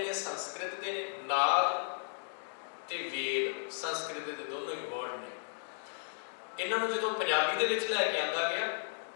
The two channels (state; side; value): silent; right; digital silence